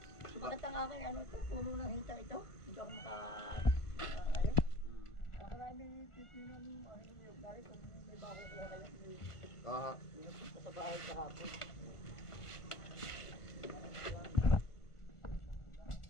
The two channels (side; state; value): right; late; 1.4 ms